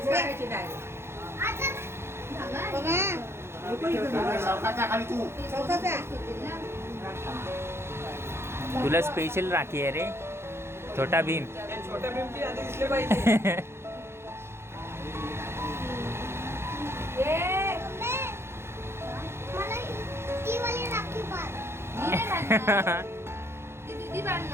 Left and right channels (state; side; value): late; left; 0.12 ms